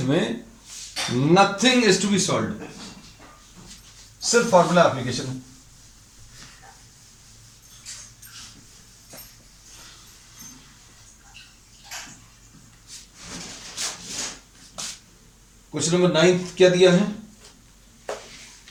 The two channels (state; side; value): identical; both; correlation 1.00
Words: में nothing is to be solve, सिर्फ फॉर्मूला एप्लीकेशन है। क्वेश्चन नंबर 9 क्या दिया है,